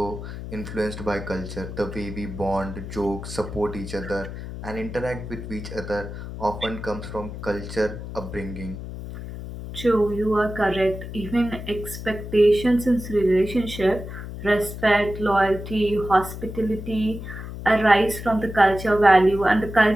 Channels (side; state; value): left; noise; hum, 9 dB below the sound